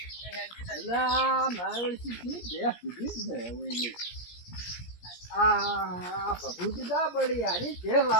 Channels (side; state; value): right; late; 17 ms